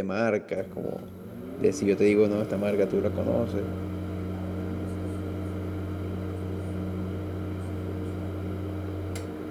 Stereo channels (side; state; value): both; identical; correlation 1.00